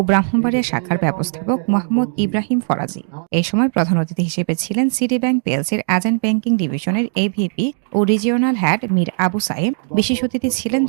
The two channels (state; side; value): silent; left; digital silence